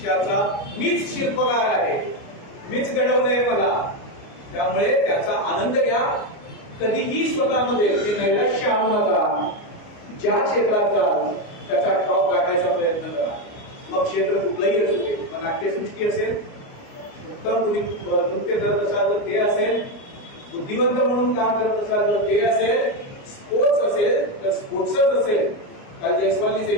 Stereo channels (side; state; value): right; late; 29 ms